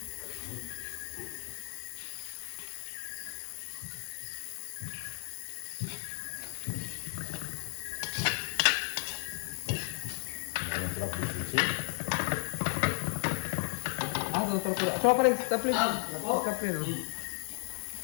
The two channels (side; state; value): right; silent; 55 dB below the other